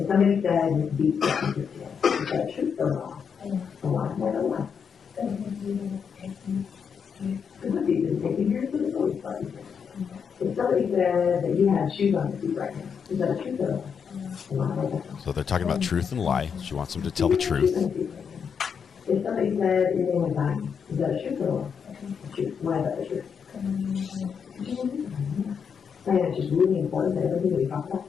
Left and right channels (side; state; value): right; quieter; 6.7 dB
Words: somebody said Miss Beat brought you here today, is that true or wrong? A lie, more than one. The Miss Beat didn't take you here, so the police brought you here. If somebody said that you had shoes on your feet right now, is that a truth or a lie? So they're talking about truth and lie. She wants them to tell the truth. If somebody said your name was dying, is that a truth or a lie? A truth. Why is that the truth? And it's just really important that everything we talk about